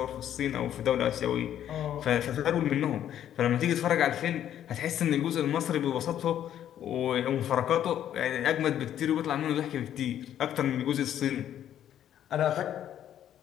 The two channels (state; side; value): quieter; right; 10.7 dB